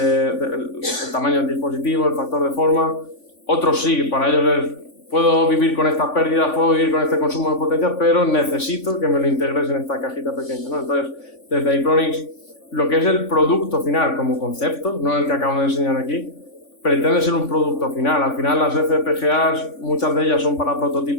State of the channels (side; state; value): right; late; 3.5 ms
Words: tamaño del dispositivo, el factor de forma. Otros sí, para ellos es: puedo vivir con estas pérdidas, puedo vivir con este consumo de potencia, pero necesito que me lo integres en esta cajita pequeña, ¿no? Entonces, desde Itronix, lo que es el producto final como concepto, no el que acabo de enseñar aquí, pretende ser un producto final. Al final, las FPGAs, muchas de ellas son para